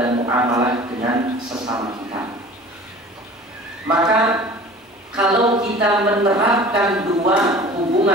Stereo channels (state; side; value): normal; both; correlation 0.43